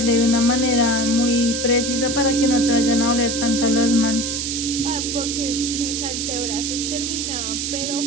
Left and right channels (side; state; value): right; noise; hiss, 3 dB below the sound